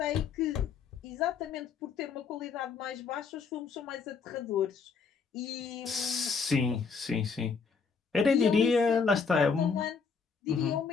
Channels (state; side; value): quieter; right; 5.5 dB